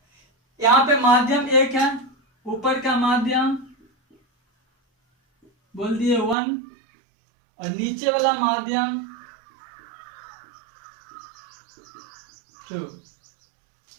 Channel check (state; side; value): drops out; left; at 6.4 s